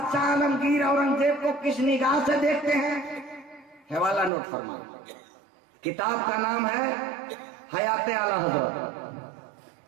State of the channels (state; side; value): drops out; left; at 4.3 s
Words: عالمگیر اورنگزیب کو کس نگاہ سے دیکھتے ہیں؟ حوالہ نوٹ فرمائیں۔ کتاب کا نام ہے حیات اعلیٰ حضرت،